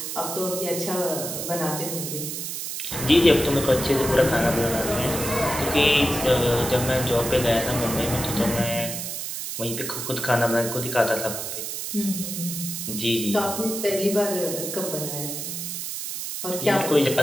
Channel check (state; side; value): noise; right; hiss, 5 dB below the sound